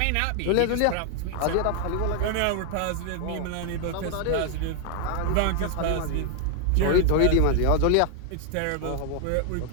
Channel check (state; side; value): different; both; correlation 0.00